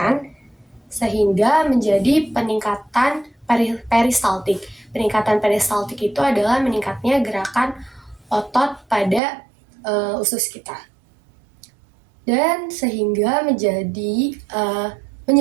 sehingga menjadi peningkatan peristaltik. Peningkatan peristaltik itu adalah meningkatnya gerakan otot pada usus kita. Dan sehingga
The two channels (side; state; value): left; drops out; at 9.2 s